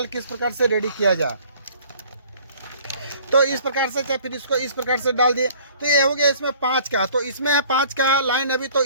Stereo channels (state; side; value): inverted; both; correlation -0.53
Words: किस प्रकार से रेडी किया जाए। तो इस प्रकार से चाहे फिर इसको इस प्रकार से डाल दिए। तो ये हो गया इसमें 5 का, तो इसमें है 5 का लाइन अभी। तो